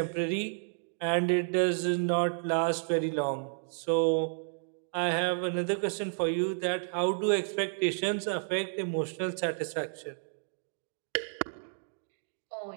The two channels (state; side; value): silent; left; digital silence